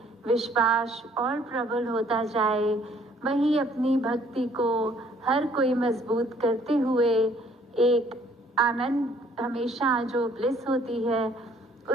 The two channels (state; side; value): normal; both; correlation 0.61